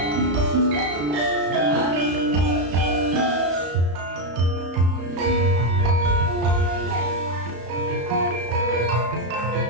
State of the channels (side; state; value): left; late; 34 ms